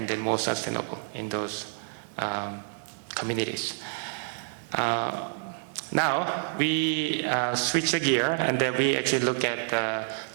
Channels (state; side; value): silent; left; digital silence